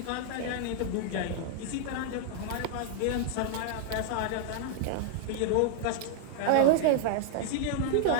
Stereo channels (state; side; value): different; both; correlation 0.00